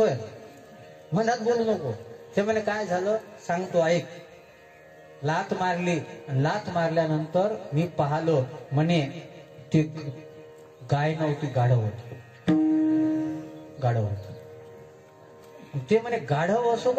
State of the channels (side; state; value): both; identical; correlation 1.00